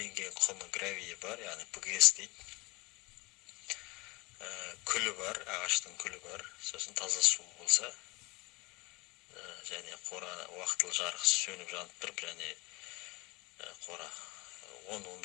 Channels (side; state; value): right; quieter; 23.7 dB